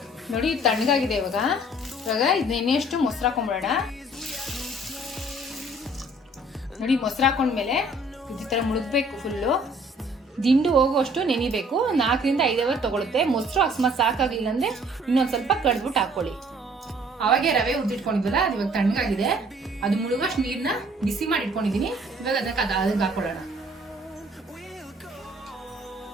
ನೋಡಿ ತಣ್ಣಗಾಗಿದೆ. ಇವಾಗ ಇದನ್ನೆಷ್ಟು ಮೊಸರು ಹಾಕೊಂಡ್ಬಿಡೋಣ. ನೋಡಿ ಮೊಸರು ಹಾಕೊಂಡ್ಮೇಲೆ ಈ ತರ ಮುಳುಗ್ಬೇಕು. ಫುಲ್ಲು ದಿಂಡು ಹೋಗುವಷ್ಟು ನೆನಿಬೇಕು. 4 ರಿಂದ 5 ಅವರ್ ತಗೊಳುತ್ತೆ. ಮೊಸರು ಅಕಸ್ಮಾತ್ ಸಾಕಾಗ್ಲಿಲ್ಲ ಅಂದ್ರೆ ಇನ್ನೊಂದ್ ಸ್ವಲ್ಪ ಕಡ್ಬಿಟ್ಟು ಹಾಕೊಳ್ಳಿ. ಅವಾಗೆ ರವೆ ಉದ್ದಿಟ್ಕೊಂಡಿದ್ವಲ್ಲ, ಅದು ಇವಾಗ ತಣ್ಣಗಾಗಿದೆ. ಅದು ಮುಳುಗಷ್ಟು ನೀರ್ನ ಬಿಸಿ ಮಾಡಿ ಇಟ್ಕೊಂಡಿದೀನಿ. ಇವಾಗ ಅದಕ್ಕೆ ಹಾಕೊಳ್ಳೋಣ.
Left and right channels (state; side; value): normal; both; correlation 0.57